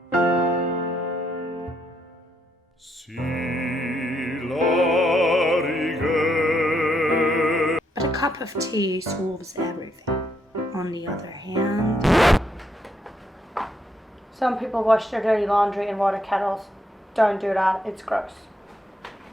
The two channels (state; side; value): normal; both; correlation 0.75